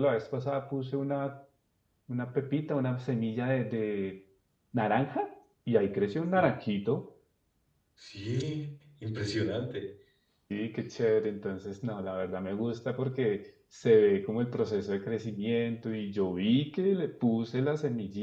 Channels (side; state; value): both; identical; correlation 1.00